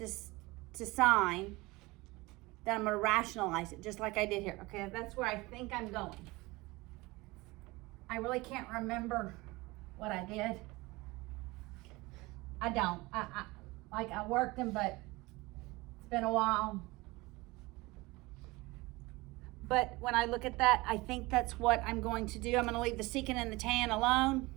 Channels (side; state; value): left; quieter; 22.2 dB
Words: to sine. Then I'm going to rationalize it just like I did here. Okay, that's where I think I'm going. I really can't remember what I did. I don't. I worked them, but it's been a while. But when I look at that, I think that's what I'm going to do. I'm going to leave the secant and the tan alone.